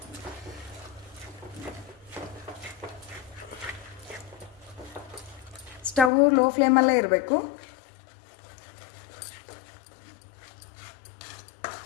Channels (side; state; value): right; drops out; at 6.1 s